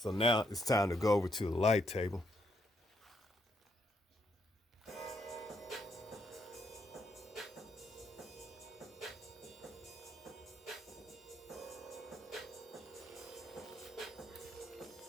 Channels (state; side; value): normal; both; correlation 0.76